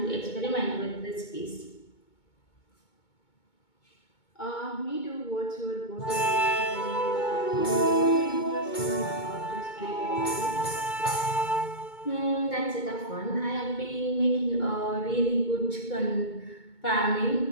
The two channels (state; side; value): late; right; 2.2 ms